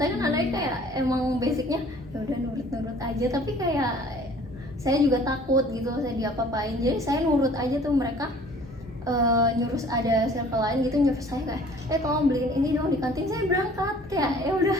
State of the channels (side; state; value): both; normal; correlation 0.52